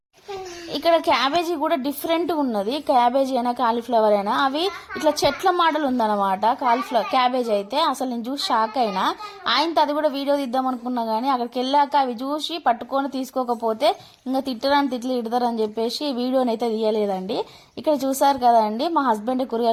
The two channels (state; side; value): identical; both; correlation 1.00